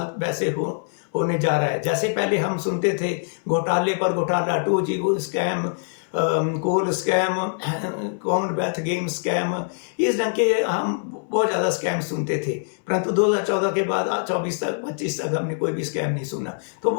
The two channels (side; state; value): right; silent; 62 dB below the other